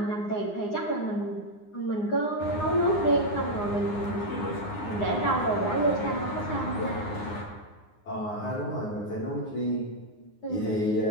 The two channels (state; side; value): late; right; 9.7 ms